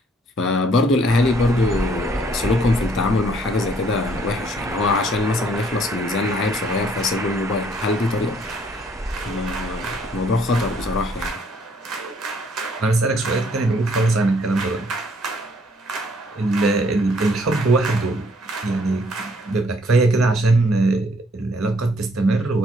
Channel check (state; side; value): normal; both; correlation 0.64